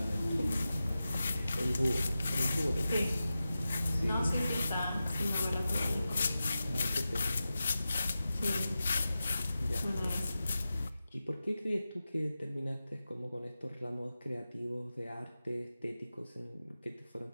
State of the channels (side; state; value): both; inverted; correlation -0.93